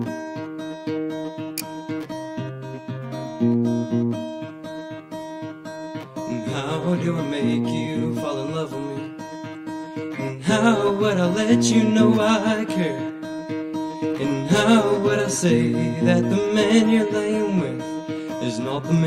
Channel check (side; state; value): both; identical; correlation 1.00